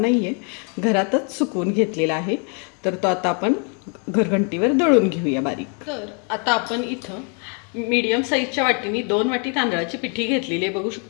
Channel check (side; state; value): right; quieter; 38.5 dB